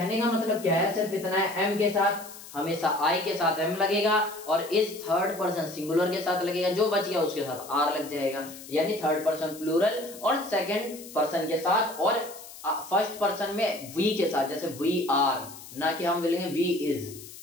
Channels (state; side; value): noise; left; hiss, 16 dB below the sound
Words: का मतलब क्या है, सिर्फ इतना है, एम के साथ हमेशा आई के साथ एम लगेगा, और इस थर्ड पर्सन सिंगुलर के साथ लगेगा, जो बच गया उसके साथ आर लग जाएगा, यानी थर्ड पर्सन प्लूरल और सेकंड पर्सन के साथ, और फर्स्ट पर्सन में वी के साथ, जैसे वी आर, ना कि हम बोलेंगे वी इज।